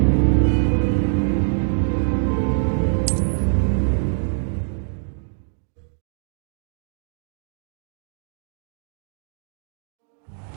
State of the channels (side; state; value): left; silent; 63 dB below the other